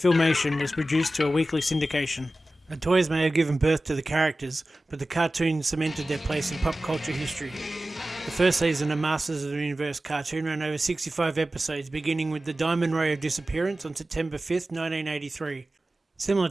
was produced to a weekly syndication. The toys may have given birth to the characters, but the cartoon cemented their place in pop culture history. The first season of Masters of the Universe cartoon ran over 65 episodes, beginning with the Diamond Ray of Disappearance on September 5th, 1983. Similar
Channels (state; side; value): normal; both; correlation 0.95